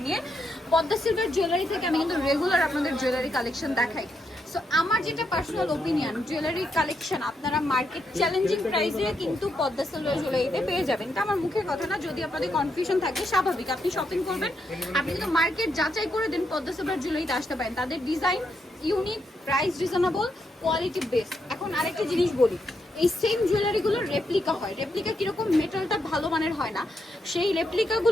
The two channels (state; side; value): normal; both; correlation 0.80